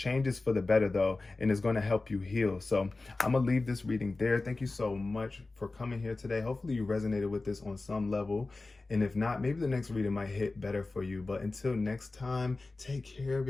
is for the better though, and it's going to help you heal. So I'm gonna leave this reading there. Thank you so much for coming here today. Hopefully you resonated with this on some level, and if not, maybe the next reading might hit better for you. But until next time, take care of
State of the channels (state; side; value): quieter; right; 3.4 dB